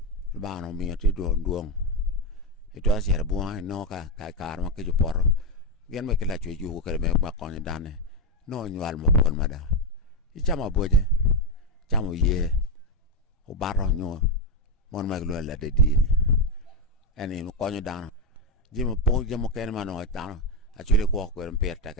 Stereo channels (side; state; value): both; normal; correlation 0.06